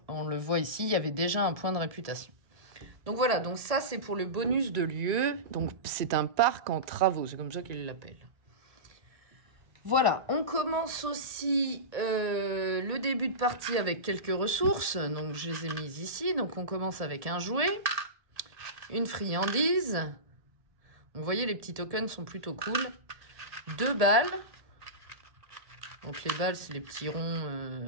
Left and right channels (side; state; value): left; late; 1.7 ms